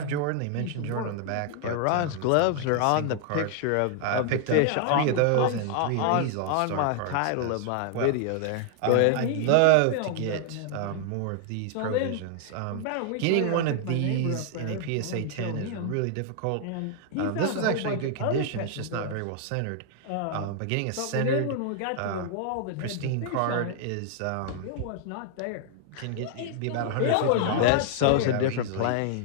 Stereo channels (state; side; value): different; both; correlation 0.00